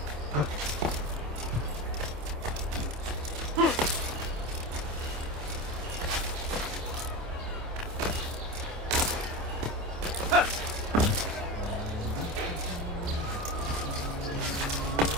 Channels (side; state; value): left; late; 27 ms